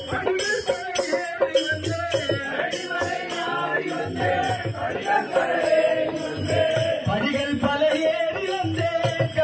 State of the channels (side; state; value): both; identical; correlation 1.00